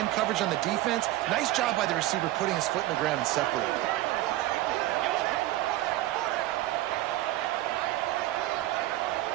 coverage on the defense. Nice job by the receiver putting his foot in the ground and separating.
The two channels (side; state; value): left; quieter; 16.1 dB